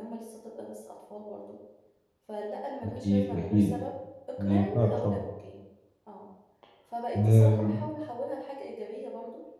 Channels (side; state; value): both; identical; correlation 1.00